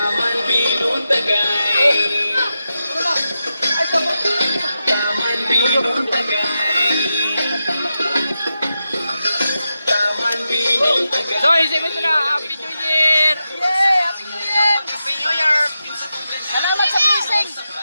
binong tagay. Taman binong tagay. Taman binong tagay. So, isipin ito na. Happy New Year! Happy New Year! Happy New Year! Salamat sa blessing!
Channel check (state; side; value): inverted; both; correlation -0.89